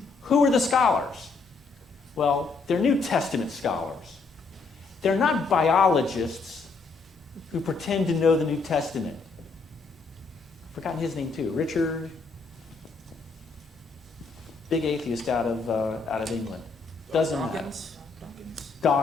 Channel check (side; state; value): right; quieter; 4.3 dB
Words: Who are the scholars? Well, they're New Testament scholars. They're not biologists who pretend to know the New Testament. I've forgotten his name too. Richard, big atheist out of England. Doesn't matter.